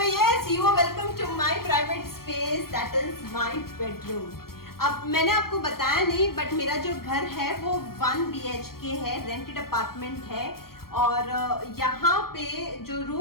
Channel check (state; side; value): late; right; 0.93 ms